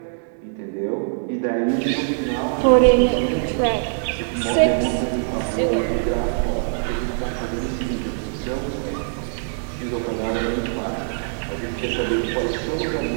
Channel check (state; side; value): silent; left; 64 dB below the other